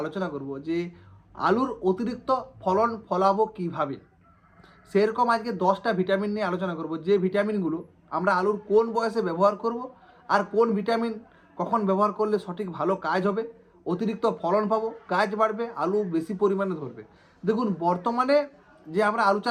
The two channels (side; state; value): both; identical; correlation 1.00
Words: আলোচনা করব যে আলুর অতিরিক্ত ফলন ফলাবো কিভাবে। সেরকম আজকে 10টা ভিটামিন নিয়ে আলোচনা করব, যে ভিটামিনগুলো আমরা আলুর কোন বয়সে ব্যবহার করব আর কোন ভিটামিন কখন ব্যবহার করলে সঠিক ভালো কাজ হবে, অতিরিক্ত ফলন পাবো, গাছ বাড়বে, আলু বেশি পরিমাণে ধরবে। দেখুন, বর্তমানে যে আমরা আলু